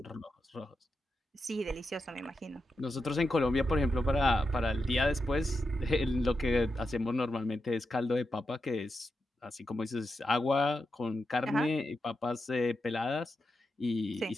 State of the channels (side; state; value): both; normal; correlation 0.87